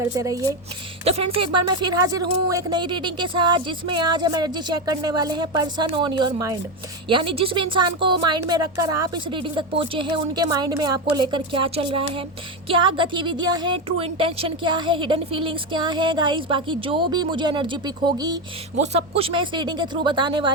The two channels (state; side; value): normal; both; correlation 0.12